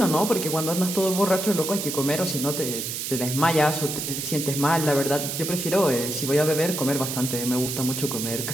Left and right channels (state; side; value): noise; right; hiss, 4 dB below the sound